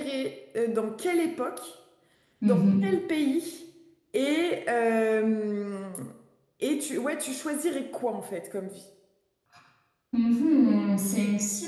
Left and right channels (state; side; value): identical; both; correlation 1.00